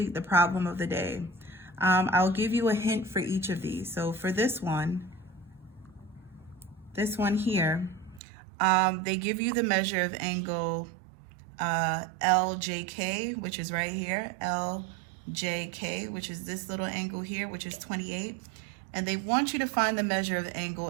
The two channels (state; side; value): drops out; left; at 8.2 s